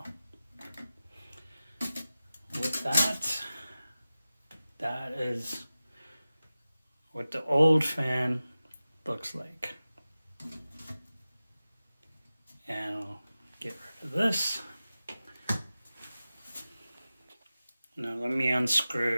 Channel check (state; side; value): inverted; both; correlation -0.95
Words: With that is what the old fan looks like. And I'll get rid of this. Now let me